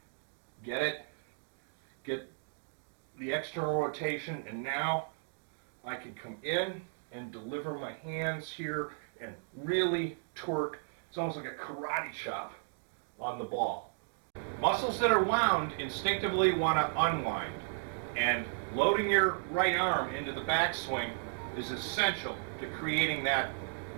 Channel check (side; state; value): left; silent; digital silence